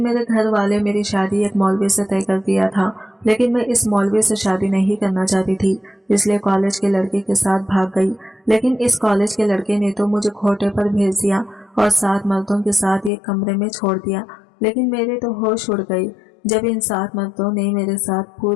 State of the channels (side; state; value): right; drops out; at 13.1 s